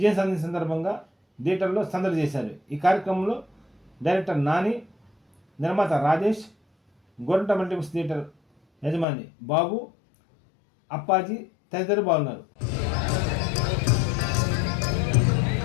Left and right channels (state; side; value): drops out; right; at 9.1 s